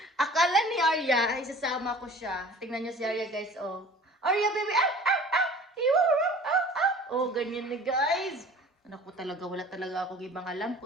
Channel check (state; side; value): normal; both; correlation 0.45